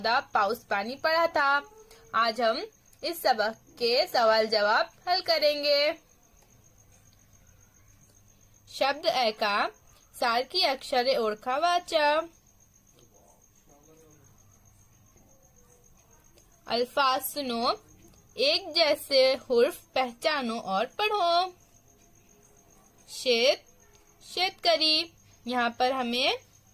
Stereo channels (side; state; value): both; identical; correlation 1.00